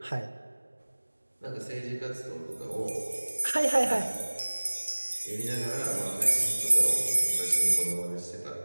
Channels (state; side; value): inverted; both; correlation -1.00